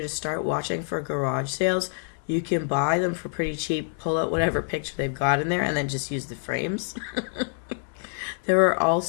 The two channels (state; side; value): silent; right; 61 dB below the other